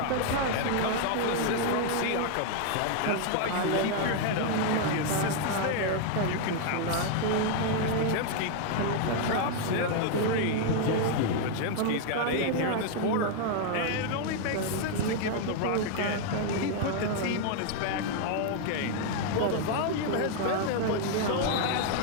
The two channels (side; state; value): both; different; correlation 0.00